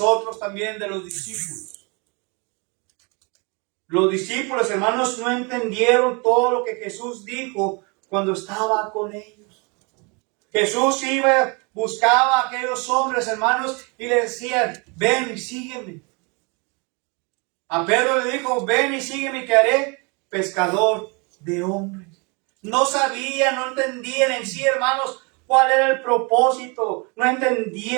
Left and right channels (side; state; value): left; quieter; 30.9 dB